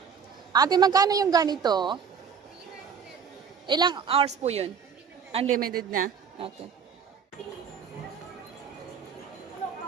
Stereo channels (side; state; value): left; quieter; 6.6 dB